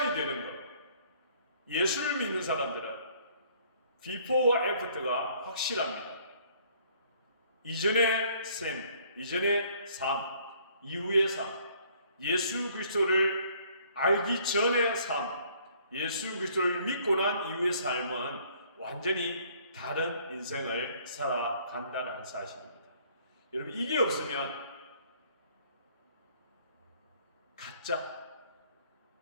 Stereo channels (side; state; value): both; inverted; correlation -0.60